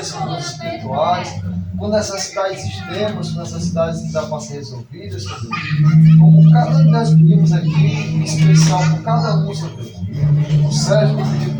com dores espirituais, com necessidades extremas, com necessidades que dá para ser resolvidas, Senhor Deus. Como cada um de nós pedimos aqui, em especial por cada um, Senhor Deus. O Sérgio pediu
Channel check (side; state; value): both; identical; correlation 1.00